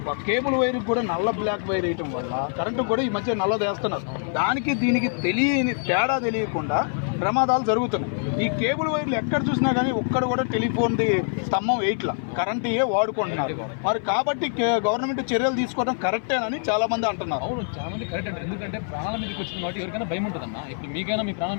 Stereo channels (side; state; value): right; silent; 56 dB below the other